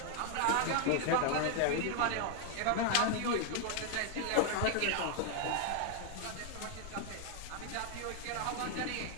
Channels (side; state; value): both; different; correlation 0.00